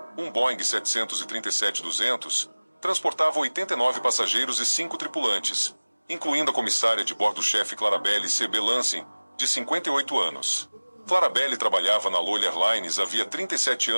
um Boeing 737-200, transportava 89 passageiros e 5 tripulantes, incluindo a comissária de bordo-chefe Clarabelle C.B. Lansing, de 58 anos. Clarabelle trabalhava na Lola Airlines havia 37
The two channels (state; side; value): inverted; both; correlation -1.00